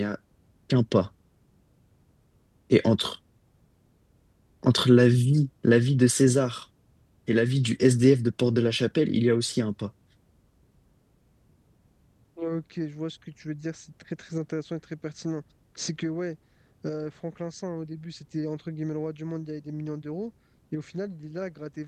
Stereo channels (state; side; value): identical; both; correlation 1.00